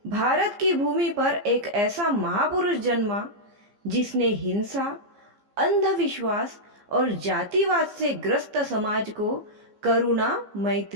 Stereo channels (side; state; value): left; late; 15 ms